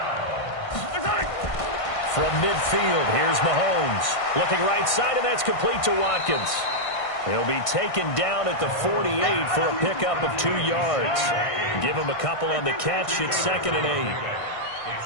From midfield, here's Mahomes. Looking right side, and that's complete to Watkins. He'll be taken down at the 48 for a pickup of 2 yards. Give him a couple on the catch. It's 2nd and 8.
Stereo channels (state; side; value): late; right; 1.5 ms